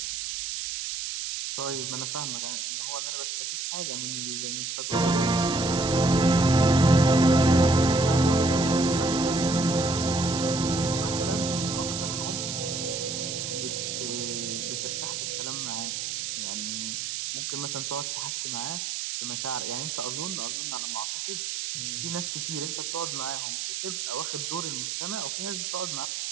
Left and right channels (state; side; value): noise; right; hiss, 4 dB below the sound